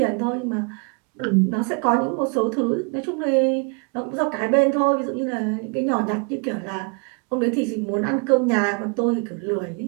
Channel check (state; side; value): quieter; left; 35.2 dB